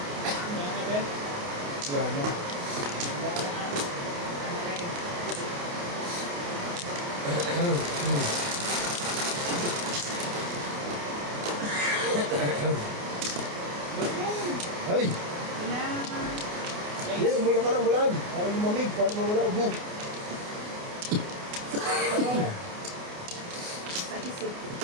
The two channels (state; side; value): late; left; 28 ms